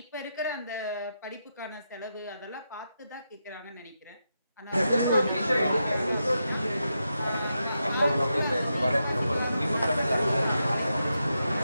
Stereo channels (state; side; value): inverted; both; correlation -0.86